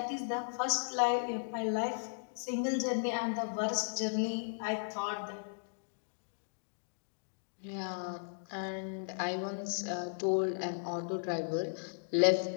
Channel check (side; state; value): right; silent; digital silence